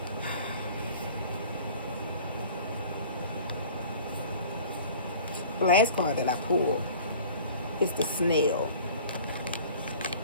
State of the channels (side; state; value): both; inverted; correlation -0.46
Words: The last card that I pulled is the snail.